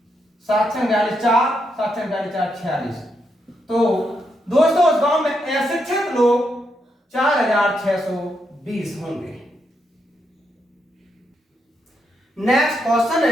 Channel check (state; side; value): normal; both; correlation 0.80